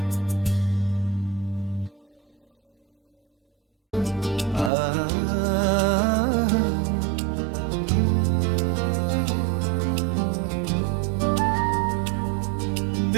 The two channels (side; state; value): left; drops out; at 4.7 s